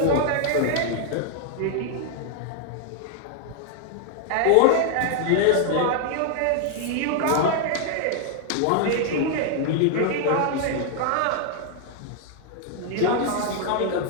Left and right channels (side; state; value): both; different; correlation 0.00